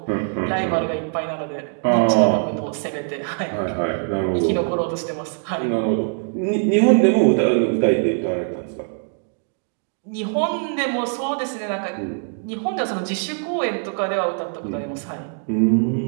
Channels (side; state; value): left; silent; 57 dB below the other